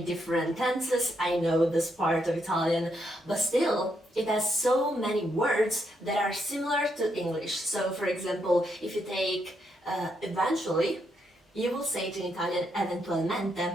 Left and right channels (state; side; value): normal; both; correlation 0.78